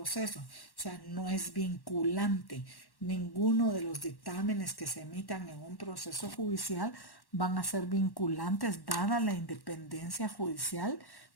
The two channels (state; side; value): late; right; 1.1 ms